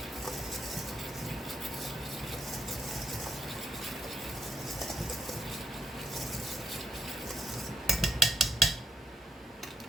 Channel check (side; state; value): both; normal; correlation 0.79